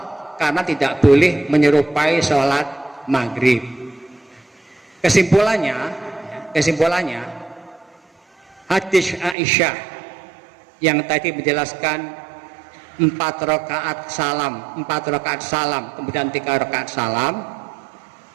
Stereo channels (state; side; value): drops out; left; at 9.3 s